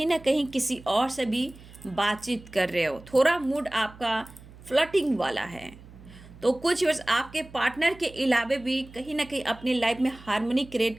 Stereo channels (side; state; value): right; noise; hum, 20 dB below the sound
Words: ना कहीं किसी और से भी बातचीत कर रहे हो, थोड़ा मूड आपका फ्लर्टिंग वाला है। तो कुछ व्यूअर्स आपके पार्टनर के अलावा भी कहीं ना कहीं अपनी लाइफ में हार्मनी क्रिएट